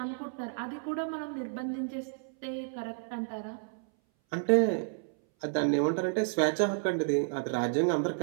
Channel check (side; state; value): left; silent; 57 dB below the other